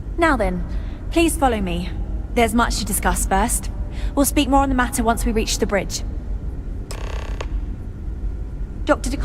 Now then, please follow me. There's much to discuss first. We'll speak more on the matter once we reach the bridge. Dr.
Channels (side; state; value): both; identical; correlation 1.00